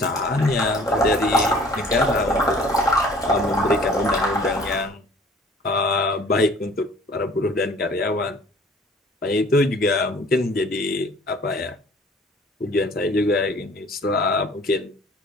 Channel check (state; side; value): normal; both; correlation 0.52